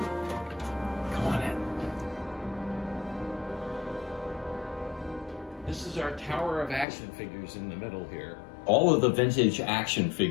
Come on in. This is our tower of action figures in the middle here. All of the vintage action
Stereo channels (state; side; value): drops out; right; at 6.9 s